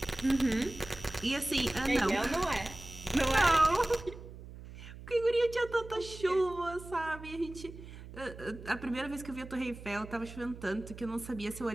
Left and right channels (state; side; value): noise; right; hum, 14 dB below the sound